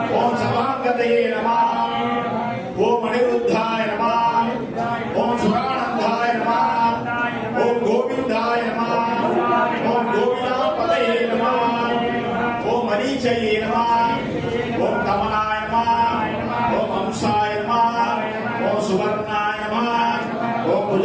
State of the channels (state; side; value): identical; both; correlation 1.00